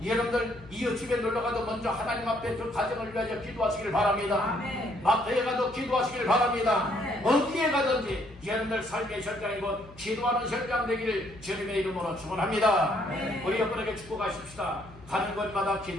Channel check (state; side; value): noise; left; hum, 21 dB below the sound